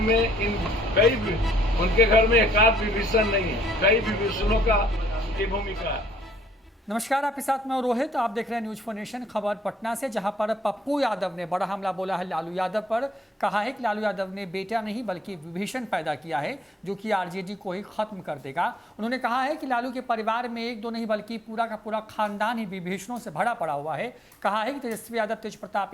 में उनके घर में एकाध विभीषण नहीं है, कई विभीषणों की भूमिका है। नमस्कार, आपके साथ मैं रोहित। आप देख रहे हैं न्यूज फॉर नेशन। खबर पटना से, जहां पर पप्पू यादव ने बड़ा हमला बोला है लालू यादव पर। कहा है कि लालू यादव ने बेटा नहीं बल्कि विभीषण पैदा किया है जो कि आरजेडी को ही खत्म कर देगा। उन्होंने कहा है कि लालू के परिवार में एक दो नहीं बल्कि पूरा का पूरा खानदान ही विभीषणों से भरा पड़ा हुआ है। कहा है कि तेजस्वी यादव, तेज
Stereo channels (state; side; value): normal; both; correlation 0.67